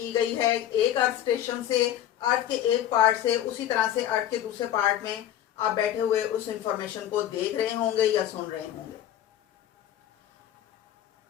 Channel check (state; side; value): quieter; right; 11.5 dB